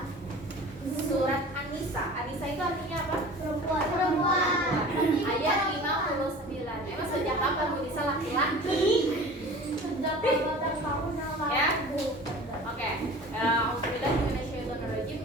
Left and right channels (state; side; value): normal; both; correlation 0.41